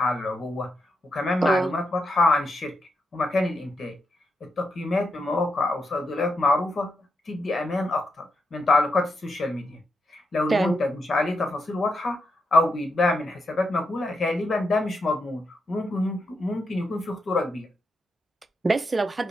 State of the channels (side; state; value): both; normal; correlation 0.83